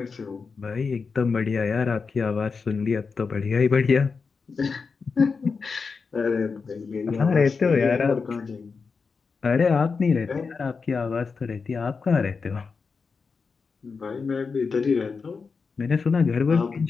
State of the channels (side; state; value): right; quieter; 5.0 dB